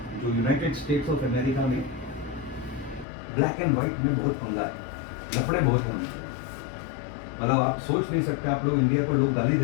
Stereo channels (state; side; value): drops out; right; at 3.1 s